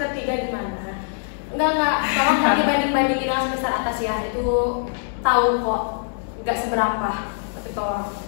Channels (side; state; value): right; silent; digital silence